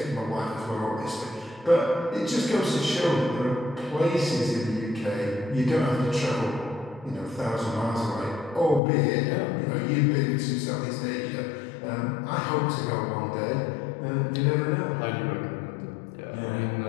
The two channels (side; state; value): right; drops out; at 8.8 s